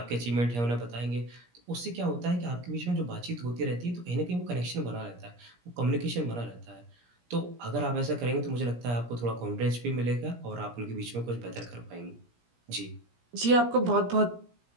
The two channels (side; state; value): left; late; 17 ms